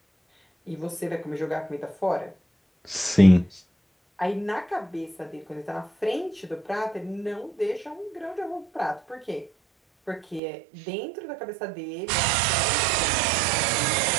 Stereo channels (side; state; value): left; drops out; at 10.4 s